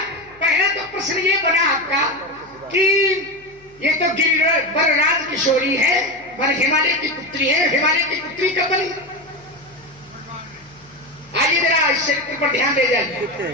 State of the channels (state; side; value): noise; left; hum, 28 dB below the sound